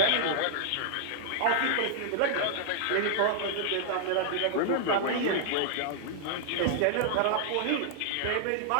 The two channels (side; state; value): both; different; correlation -0.01